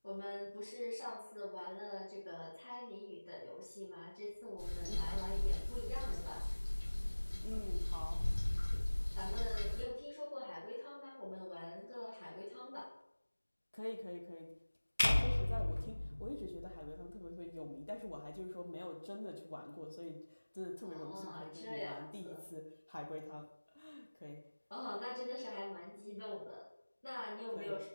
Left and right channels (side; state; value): both; inverted; correlation -1.00